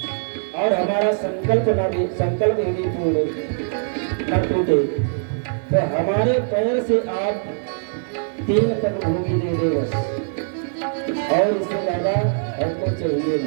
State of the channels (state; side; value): silent; left; 60 dB below the other